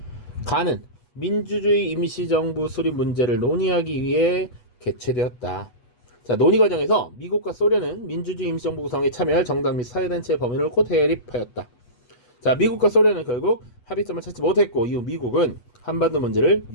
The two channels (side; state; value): right; late; 8.2 ms